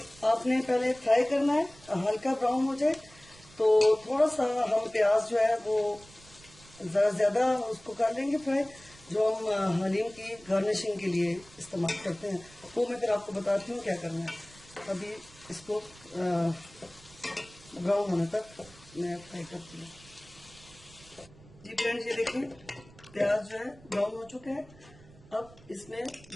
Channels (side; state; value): right; noise; rumble, 23 dB below the sound